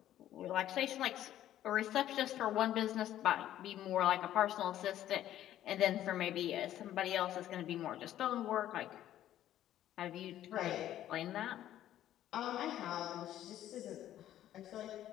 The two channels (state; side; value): quieter; right; 12.3 dB